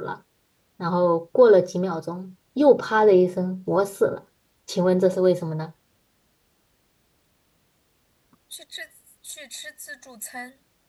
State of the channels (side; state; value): both; identical; correlation 1.00